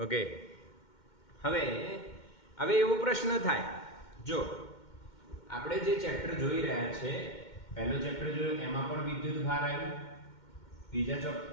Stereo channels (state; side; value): late; right; 2.1 ms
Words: ઓકે, હવે એવો પ્રશ્ન થાય, જો આપણે જે ચેપ્ટર જોઈ રહ્યા છે, પહેલો ચેપ્ટર જોયું એમાં પણ વિદ્યુત ભાર આવ્યું, બીજા